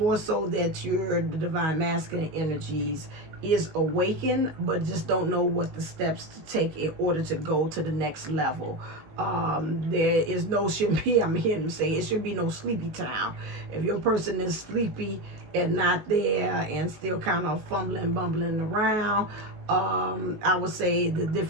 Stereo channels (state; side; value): late; left; 19 ms